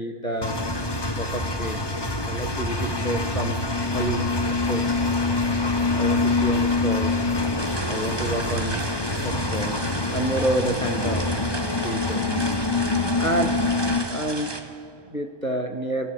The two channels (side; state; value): right; late; 1.2 ms